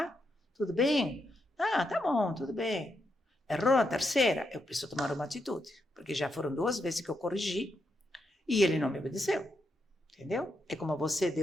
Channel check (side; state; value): both; normal; correlation 0.82